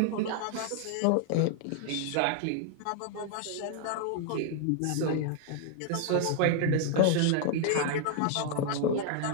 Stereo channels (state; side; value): different; both; correlation 0.00